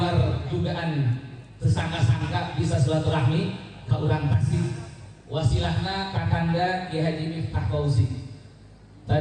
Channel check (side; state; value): both; identical; correlation 1.00